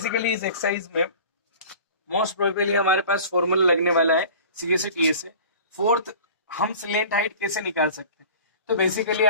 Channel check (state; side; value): inverted; both; correlation -0.41